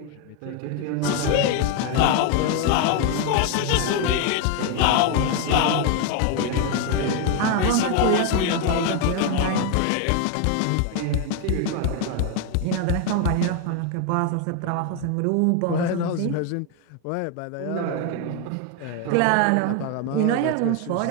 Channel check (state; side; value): different; both; correlation 0.01